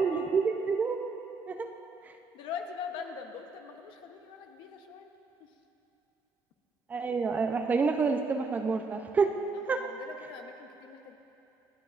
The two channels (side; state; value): left; quieter; 4.0 dB